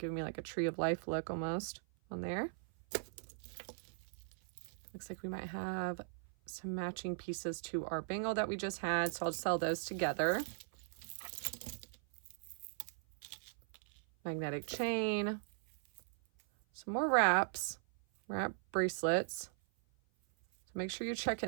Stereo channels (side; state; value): left; silent; 52 dB below the other